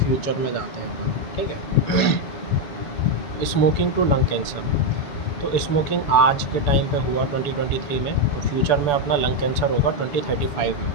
में जाते हैं अपन, ठीक है। स्मोकिंग टू लंग कैंसर, तो स्मोकिंग आज के टाइम पे हुआ 2023 में, तो फ्यूचर में अपना लंग कैंसर होगा 2035 में,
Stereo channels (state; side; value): late; right; 6.9 ms